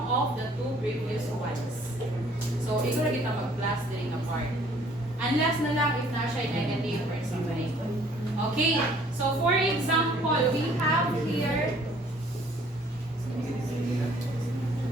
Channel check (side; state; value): both; normal; correlation 0.58